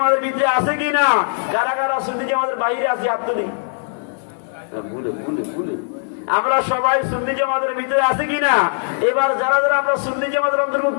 ভিতরে আছে কিনা? কারা কারা সুন্নি জামাতের বাইরে আছে? হাত তুলি। আমরা সবাই সুন্নি জামাতের ভিতরে আছে কিনা? এবার যারা যারা আমরা সুন্নি জামাতের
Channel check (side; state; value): right; silent; digital silence